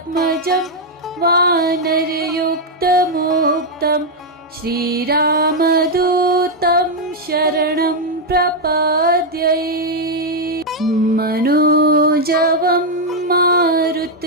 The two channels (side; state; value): both; normal; correlation -0.01